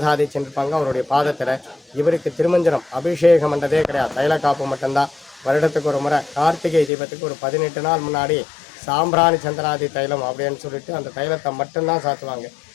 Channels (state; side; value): drops out; right; at 6.9 s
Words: சென்றிருப்பாங்க அவருடைய பாதத்தில். இவருக்கு திருமஞ்சனம் அபிஷேகம் பண்ணுறதே கிடையாது, தைல காப்பு மட்டும்தான். வருடத்துக்கு ஒரு முறை கார்த்திகை தீபத்துக்கு ஒரு 18 நாள் முன்னாடி சாம்பிராணி சந்திராதி தைலம் அப்படின்னு சொல்லிட்டு அந்த தைலத்தை மட்டும்தான் சாத்துவாங்க.